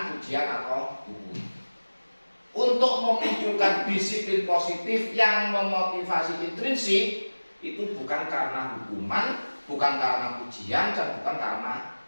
pujian atau hukum. Untuk memunculkan disiplin positif yang memotivasi intrinsik itu bukan karena hukuman, bukan karena pujian, dan bukan karena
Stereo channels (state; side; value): inverted; both; correlation -1.00